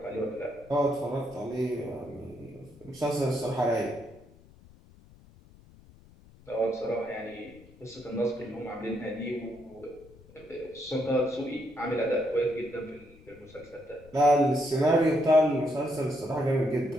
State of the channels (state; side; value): noise; left; rumble, 24 dB below the sound